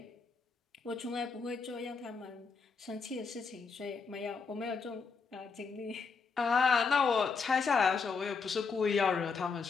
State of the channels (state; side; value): quieter; right; 5.1 dB